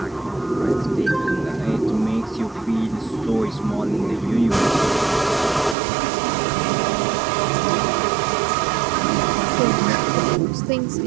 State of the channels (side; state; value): left; drops out; at 5.8 s